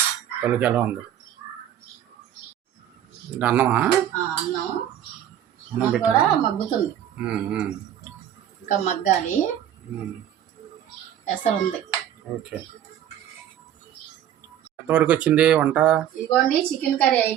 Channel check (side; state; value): left; quieter; 10.8 dB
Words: పలుకి ఎలా ఉంది అన్నమా? అన్నం కూడా మగ్గుతుంది, ఇంకా మగ్గాలి. ఎసరు ఉంది. ఓకే. ఎంతవరకు వచ్చింది వంట? ఇదిగోండి, చికెన్ కర్రీ